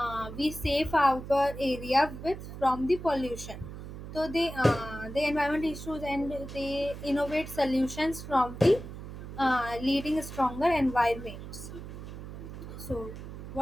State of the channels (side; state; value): right; noise; hum, 11 dB below the sound